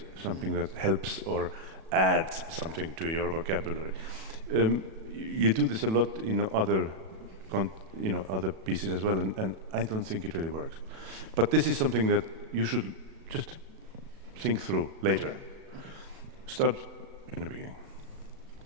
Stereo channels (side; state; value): left; late; 37 ms